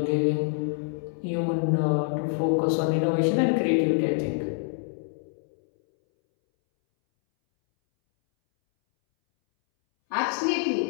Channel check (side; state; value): right; silent; 61 dB below the other